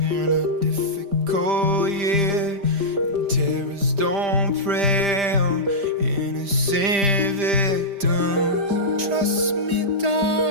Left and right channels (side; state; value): left; late; 5.0 ms